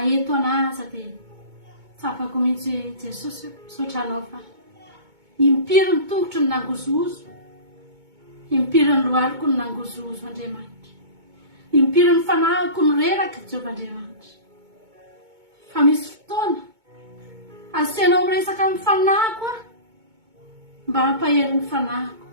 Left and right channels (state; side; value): late; left; 2.2 ms